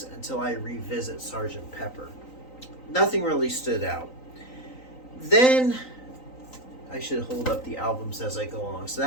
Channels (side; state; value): right; late; 3.9 ms